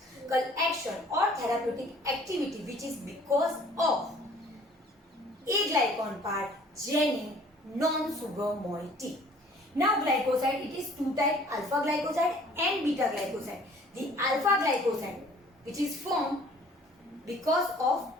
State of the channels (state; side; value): normal; both; correlation 0.54